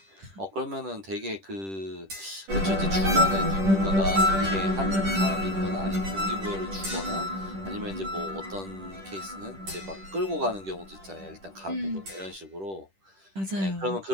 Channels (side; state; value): left; late; 10 ms